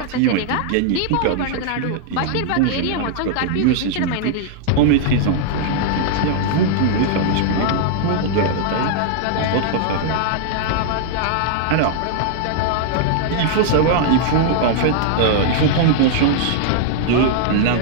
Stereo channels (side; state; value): both; different; correlation -0.01